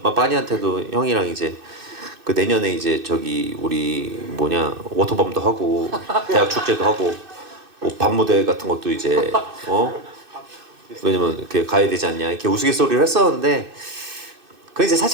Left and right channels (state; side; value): late; left; 2.6 ms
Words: 빠니한테도 형이랑 이제 그 내년에 이제 저기 우리 뭐냐 워터밤도 하고 대학 축제도 하고 뭐 밤무대 같은 것도 이제 왜냐면 이렇게 가야 되지 않냐 이렇게 우스갯소리를 했었는데 그게 이제